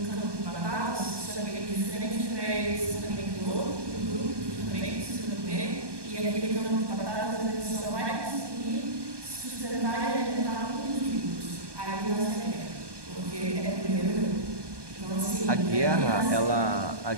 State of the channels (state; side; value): late; left; 1.2 ms